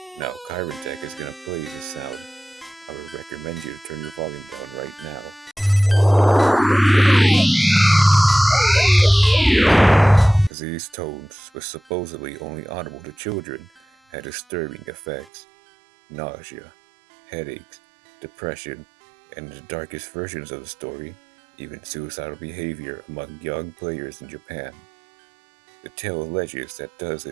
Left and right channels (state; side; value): drops out; left; at 15.3 s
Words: Now, Kyron Tech is gonna play this sound. I would recommend you to turn your volume down right now. These tones, which supposedly only audible to children, had disturbing effects. Nausea, headaches, depression, and in the darkest versions of the story, even suicidal behavior among young players in Japan. The tale alleges that